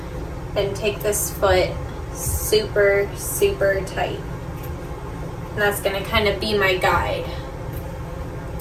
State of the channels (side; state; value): both; identical; correlation 1.00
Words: and take this foot super, super tight. And that's going to kind of be my guide.